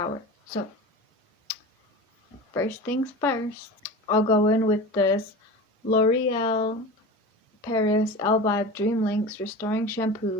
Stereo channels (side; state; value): both; normal; correlation 0.31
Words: So, first things first, I'll go in with this L'Oreal Paris Elvive Dream Links Restoring